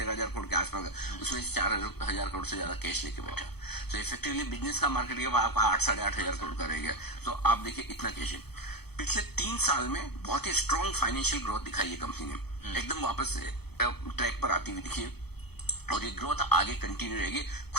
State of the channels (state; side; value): late; right; 0.97 ms